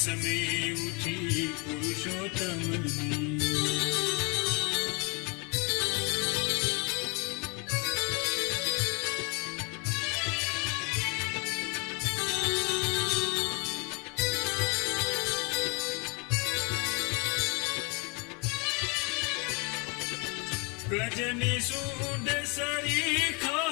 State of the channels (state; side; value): quieter; right; 31.8 dB